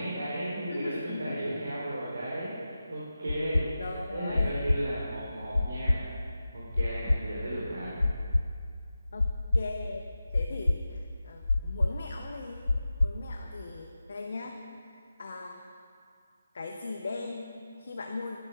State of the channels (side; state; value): both; inverted; correlation -0.93